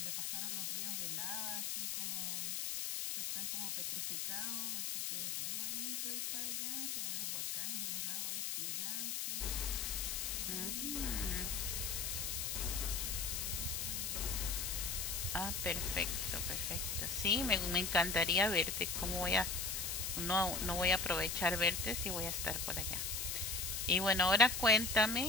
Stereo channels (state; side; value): noise; left; hiss, 1 dB below the sound